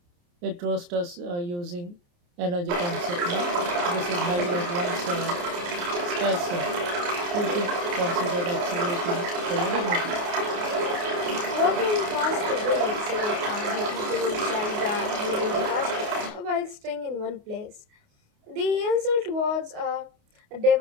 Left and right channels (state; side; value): late; left; 28 ms